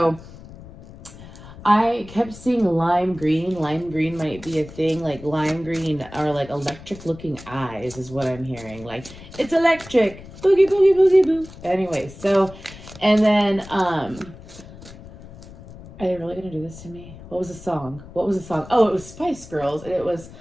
I kept seeing lime green. Lime green might be a thing. Like lime green are like electric looking eyes is what I'm hearing. Like it's electric. Boogie, boogie, boogie, boo. Anyway, so, and then, are they really going to do this to me? What was the song? Oh, it was Spice Girls. And it was,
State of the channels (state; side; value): noise; left; rumble, 17 dB below the sound